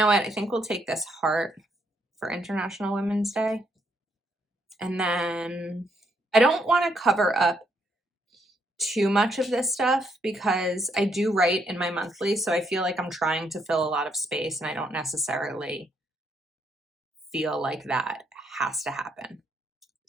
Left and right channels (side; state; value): both; normal; correlation 0.74